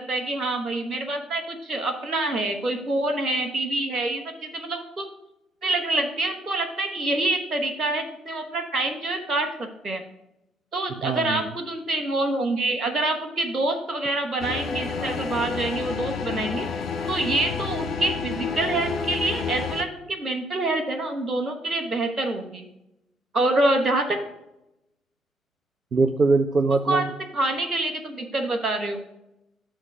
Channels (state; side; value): normal; both; correlation 0.68